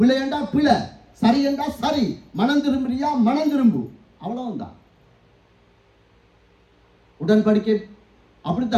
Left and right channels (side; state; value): both; identical; correlation 1.00